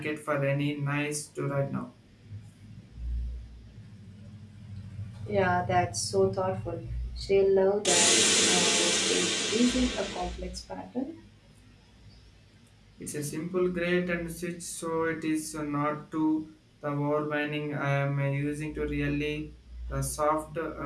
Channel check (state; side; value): identical; both; correlation 1.00